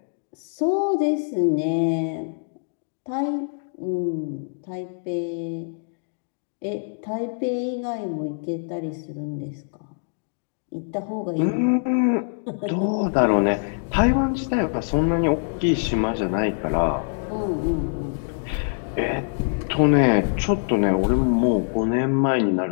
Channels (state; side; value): silent; right; digital silence